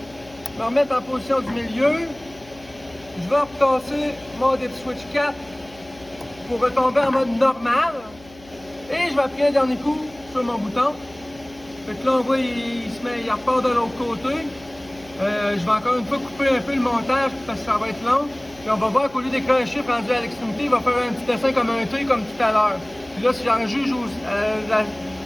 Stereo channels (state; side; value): noise; left; hum, 23 dB below the sound